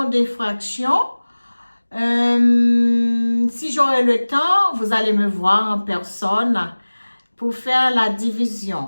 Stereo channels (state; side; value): inverted; both; correlation -1.00